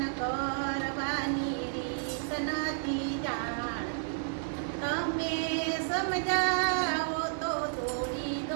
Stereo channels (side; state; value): left; silent; digital silence